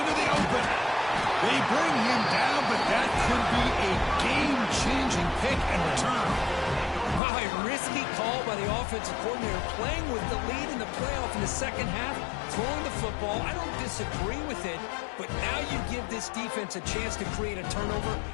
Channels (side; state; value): right; drops out; at 7.2 s